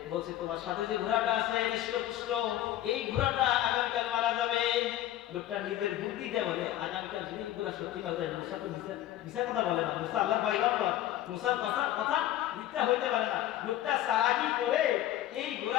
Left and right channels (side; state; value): right; quieter; 13.3 dB